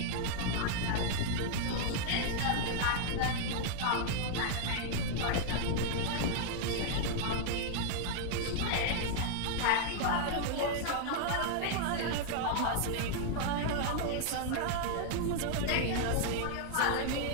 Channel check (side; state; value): both; different; correlation 0.00